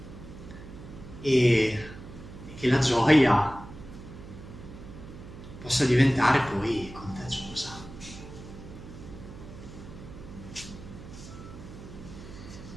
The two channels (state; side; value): noise; right; hum, 15 dB below the sound